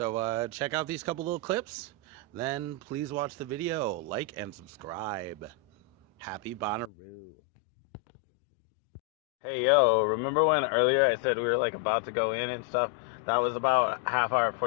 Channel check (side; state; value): right; drops out; at 6.9 s